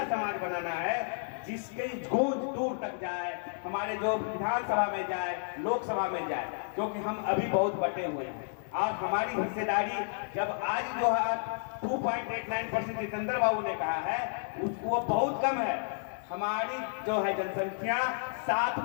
समाज बनाना है जिसकी गूंज दूर तक जाए, हमारे जो विधानसभा में जाए, लोकसभा में जाए, क्योंकि हम अभी बहुत बटे हुए हैं। और हमारी हिस्सेदारी जब आज जो है 2.89% जितेंद्र बाबू ने कहा है उसको बहुत कम है। हमारी जो है जनसंख्या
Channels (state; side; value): silent; right; digital silence